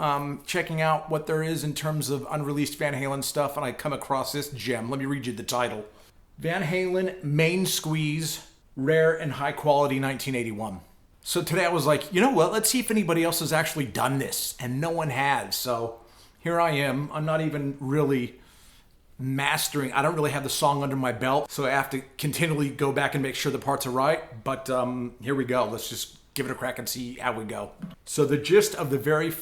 checking out what there is in terms of unreleased Van Halen stuff, and I come across this gem. Let me read you the title. Van Halen Main Squeeze, Rare and High Quality 1981. So today I was like, you know what, let's see if anybody else has actually done this, and no one has. So here I am. I'm not even really mastering. I don't really have the song under my belt, so I have to continually go back and make sure the parts are right. But here we go. Let's just give it a crack and see how we go. So the gist of the very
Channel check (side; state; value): both; identical; correlation 1.00